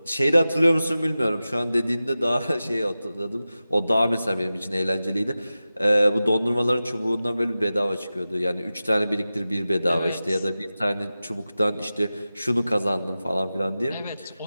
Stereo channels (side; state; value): both; inverted; correlation -0.95